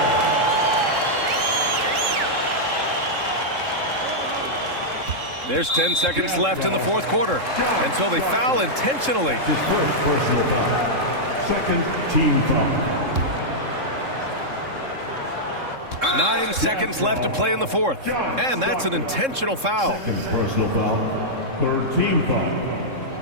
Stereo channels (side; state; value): left; late; 3.7 ms